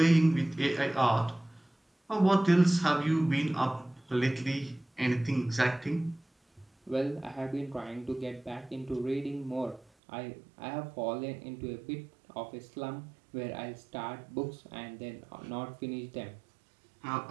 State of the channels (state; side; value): drops out; left; at 9.9 s